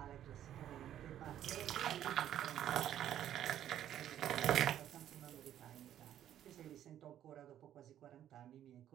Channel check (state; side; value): quieter; left; 11.2 dB